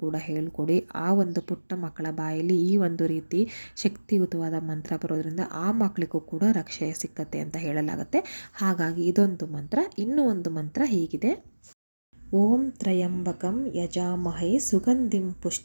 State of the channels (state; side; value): inverted; both; correlation -1.00